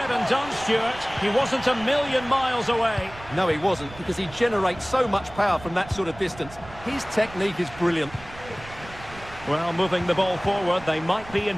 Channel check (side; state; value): right; noise; rumble, 18 dB below the sound